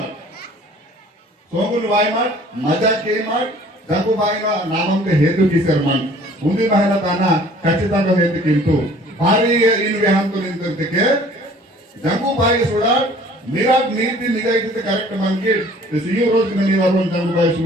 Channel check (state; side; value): normal; both; correlation 0.52